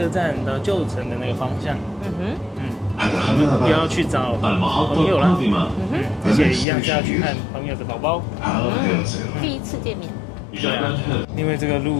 站到旧城的那个方向。我们要去找朋友了，而且一样是要去看朋友的宝宝。第一次见面。对啊，因为这个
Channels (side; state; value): right; drops out; at 6.7 s